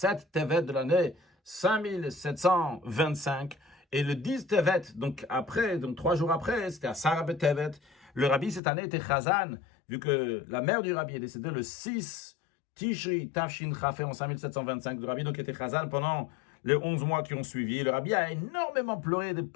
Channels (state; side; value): drops out; right; at 8.6 s